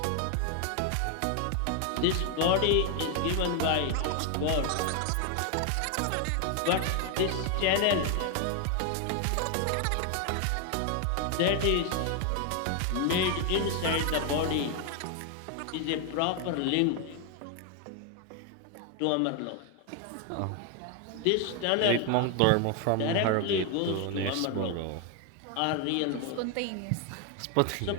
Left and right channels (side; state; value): both; different; correlation 0.01